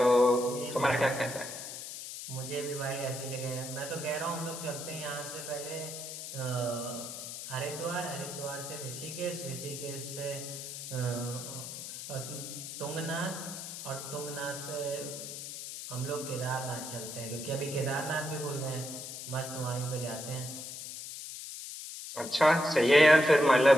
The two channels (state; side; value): noise; left; hiss, 9 dB below the sound